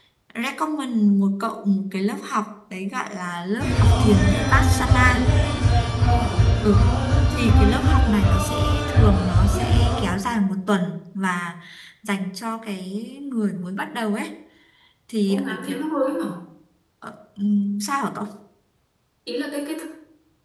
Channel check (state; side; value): identical; both; correlation 1.00